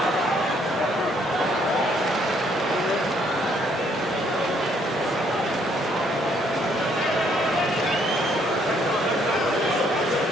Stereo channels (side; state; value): both; normal; correlation 0.67